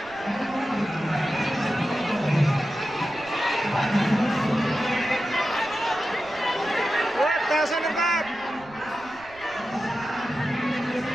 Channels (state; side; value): noise; right; rumble, 23 dB below the sound